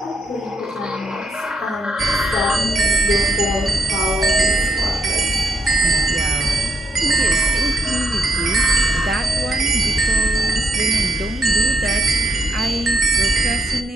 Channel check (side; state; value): both; normal; correlation 0.77